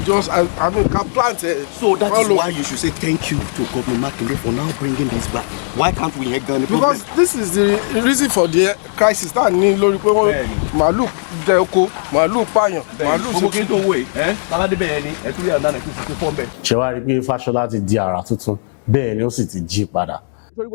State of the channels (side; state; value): right; silent; digital silence